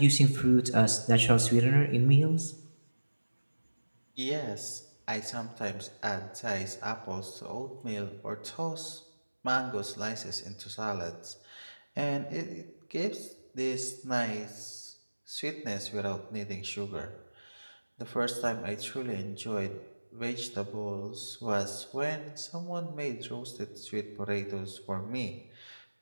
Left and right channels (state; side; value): inverted; both; correlation -1.00